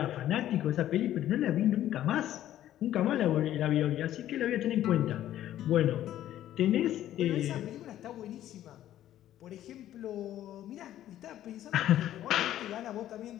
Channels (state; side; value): quieter; right; 12.5 dB